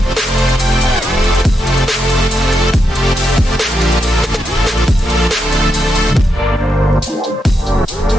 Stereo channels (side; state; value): both; normal; correlation 0.83